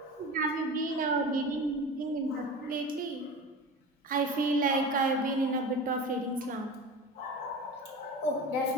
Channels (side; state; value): both; normal; correlation 0.31